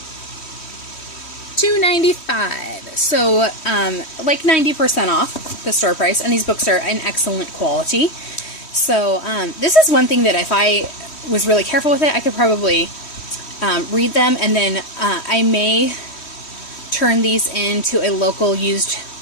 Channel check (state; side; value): late; right; 3.1 ms